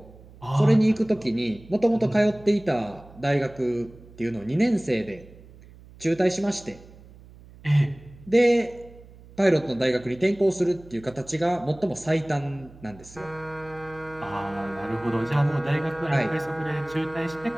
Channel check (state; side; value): noise; right; hum, 21 dB below the sound